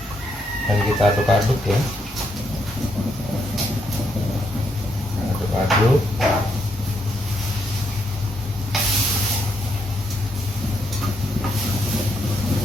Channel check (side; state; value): both; normal; correlation 0.77